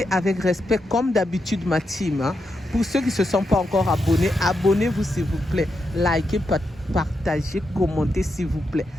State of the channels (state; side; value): normal; both; correlation 0.84